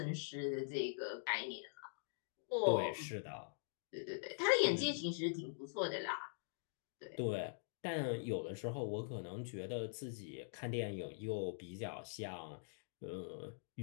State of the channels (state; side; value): silent; right; digital silence